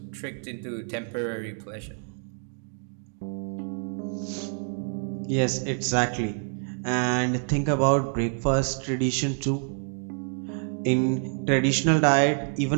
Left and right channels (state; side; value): silent; left; 56 dB below the other